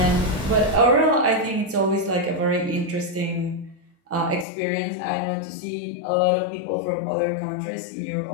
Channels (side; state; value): right; drops out; at 4.5 s